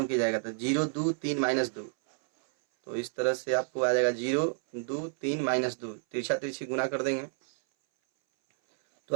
की जाएगा। तो 0 2 3 -2। तो इस तरह से आपको आ जाएगा 0 2 3 -2, तिरछा तिरछी गुना कर देंगे तो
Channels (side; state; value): left; silent; 58 dB below the other